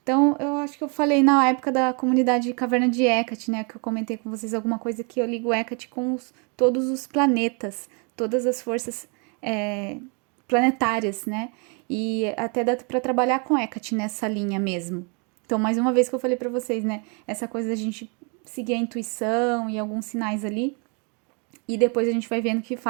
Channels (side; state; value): left; quieter; 35.4 dB